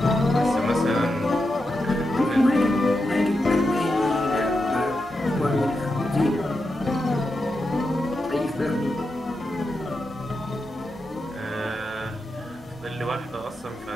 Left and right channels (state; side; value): normal; both; correlation 0.87